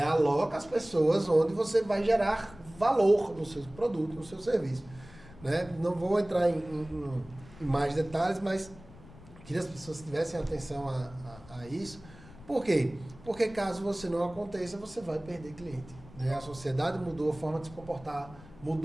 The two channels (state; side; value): noise; left; rumble, 20 dB below the sound